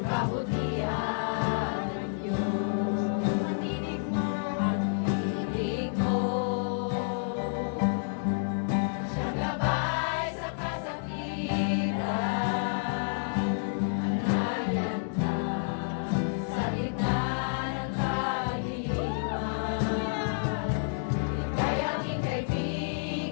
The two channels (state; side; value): silent; right; digital silence